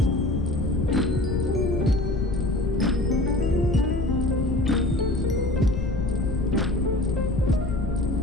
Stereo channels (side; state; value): left; noise; rumble, 2 dB below the sound